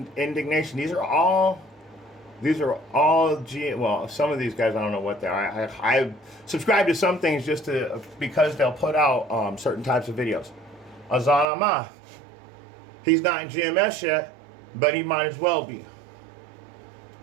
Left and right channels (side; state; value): left; drops out; at 11.5 s